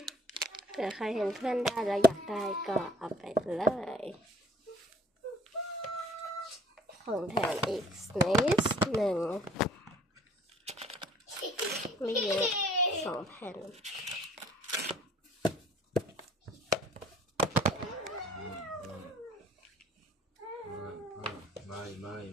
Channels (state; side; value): normal; both; correlation 0.55